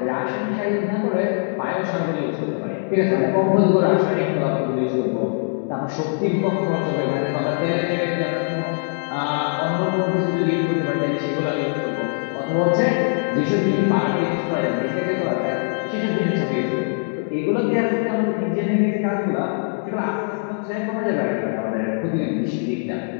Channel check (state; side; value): silent; right; 64 dB below the other